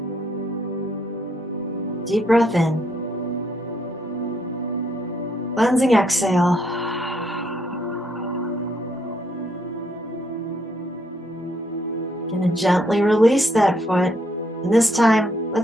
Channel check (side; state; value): both; normal; correlation 0.72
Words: Deep breath in. Cleansing exhale. Gonna gently release that foot. And this time,